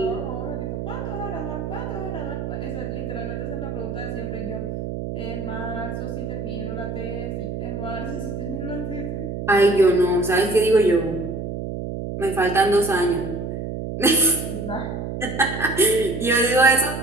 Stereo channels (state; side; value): noise; right; hum, 5 dB below the sound